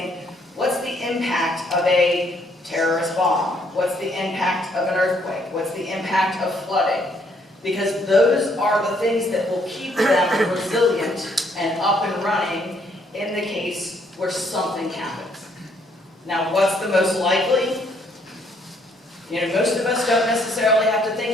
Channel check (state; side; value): normal; both; correlation 0.68